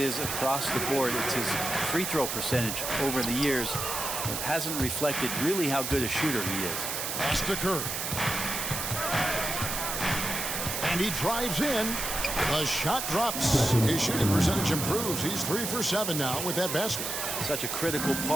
across the board, it's his free throw percentage over the years that hasn't reflected really how good a shooter he is. Pass to Curry. And he drives in. The shot drops. His shooting percentage improves. He's 3 for 7 now with that basket. Such a critical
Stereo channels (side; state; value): right; noise; hiss, 3 dB below the sound